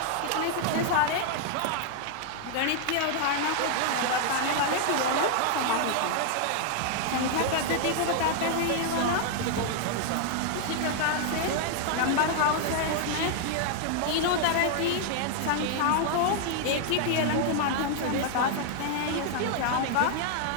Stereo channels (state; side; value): different; both; correlation 0.00